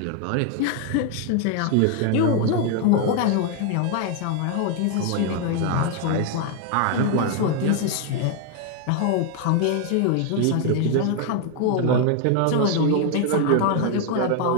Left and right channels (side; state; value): both; different; correlation 0.01